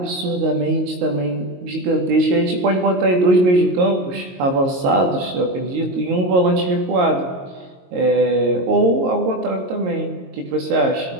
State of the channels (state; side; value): late; left; 22 ms